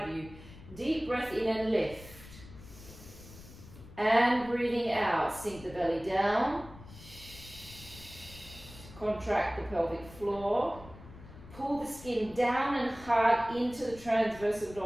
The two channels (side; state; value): left; noise; rumble, 18 dB below the sound